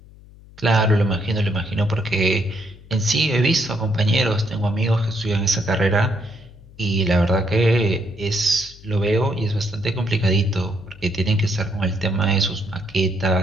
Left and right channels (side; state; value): left; noise; hum, 22 dB below the sound